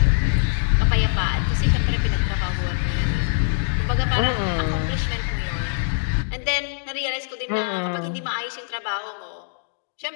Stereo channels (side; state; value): right; silent; digital silence